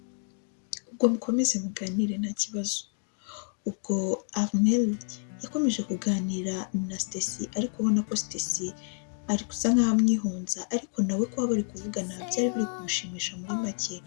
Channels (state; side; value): silent; right; 58 dB below the other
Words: ubwo mukomeze muganire nta kibazo. Ubwo Armel yakomeje kuganira na Stacy, ariko ubona ko Stacy ari gusa nkaho amwihunza, ariko nawe kuba bari kuvugana byari biri kumushimisha muri make.